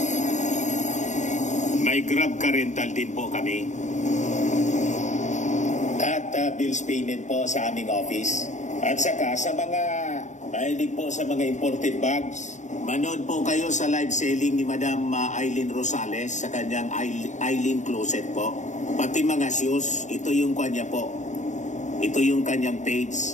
May Grab car rental din po kami. At bills payment po sa aming office. At saka sa mga Mahilig po sa mga imported bags. Manood po kayo sa live selling ni Madam Aileen Rosales sa kanyang Aileen Closet po. Pati mga shoes, ito yung kanya po. Ito yung kanyang page.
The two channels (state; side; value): late; right; 0.35 ms